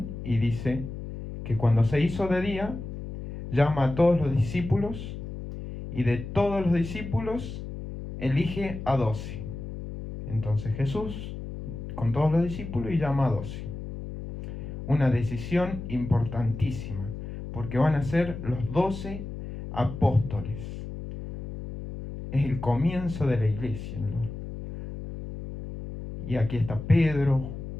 y dice que cuando se hizo de día, llama a todos los discípulos y de todos los discípulos elige a 12. Entonces Jesús con todos los discípulos y llama a 12. Una decisión importantísima, porque van a ser los 12 apóstoles. Es el comienzo de la iglesia, ¿no? Y aquí está Pedro,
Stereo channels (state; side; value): noise; left; hum, 9 dB below the sound